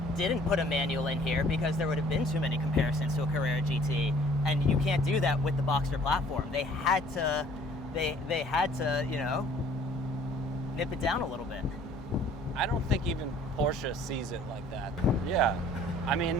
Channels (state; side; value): normal; both; correlation 0.55